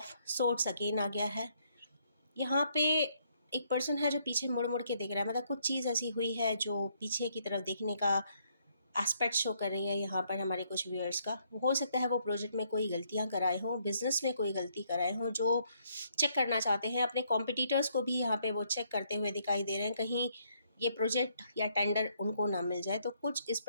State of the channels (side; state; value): both; inverted; correlation -0.71